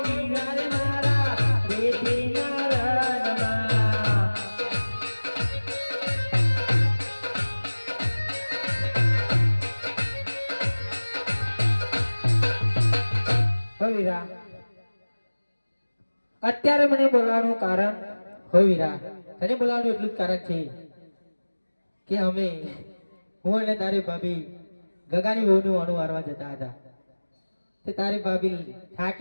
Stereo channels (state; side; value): inverted; both; correlation -1.00